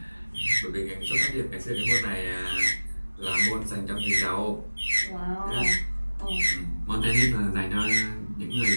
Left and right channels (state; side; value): inverted; both; correlation -1.00